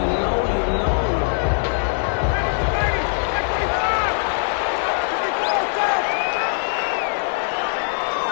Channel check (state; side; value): silent; right; digital silence